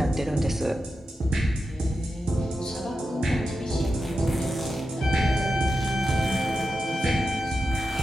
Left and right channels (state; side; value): normal; both; correlation 0.90